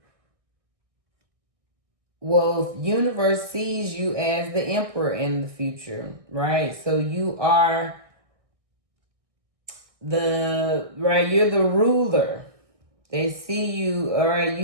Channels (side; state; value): left; late; 1.6 ms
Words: well, universe sees you as the emperor in the future, right? So you are you're the ruler. They see you, all right,